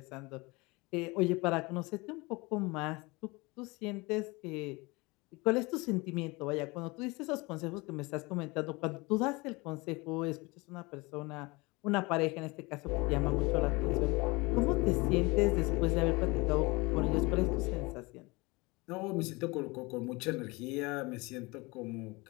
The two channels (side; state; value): right; quieter; 24.9 dB